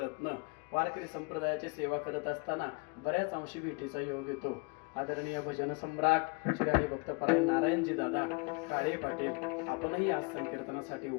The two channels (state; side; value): quieter; right; 31.7 dB